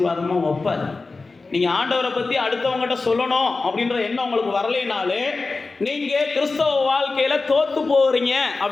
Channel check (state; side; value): quieter; right; 3.8 dB